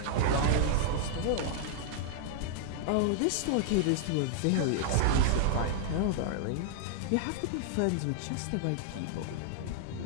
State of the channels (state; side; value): different; both; correlation -0.01